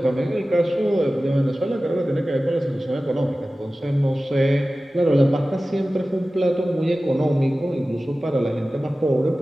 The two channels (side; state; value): both; normal; correlation 0.96